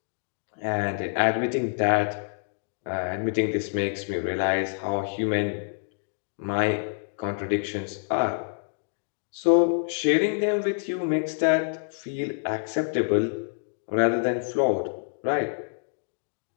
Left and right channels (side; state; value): right; silent; digital silence